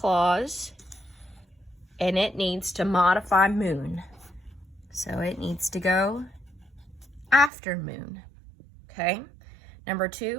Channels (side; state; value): left; drops out; at 7.5 s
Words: and it needs to modify moon. So it needs to go after moon, okay? Number